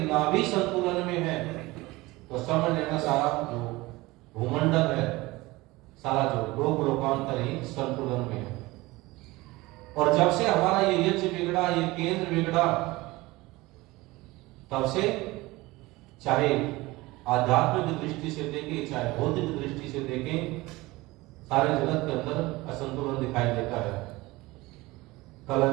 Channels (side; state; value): left; quieter; 20.7 dB